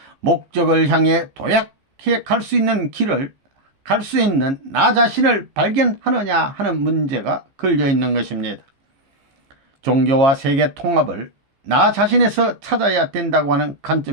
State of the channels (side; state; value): left; late; 15 ms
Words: 목적을 향해 도약해 갈 수 있는 길을 갈 수 있는 나 자신을 발견하느냐 하는 문제가 걸려 있는 것입니다. 종교와 세계 통합을 나 자신에서 찾아야 된다고 하는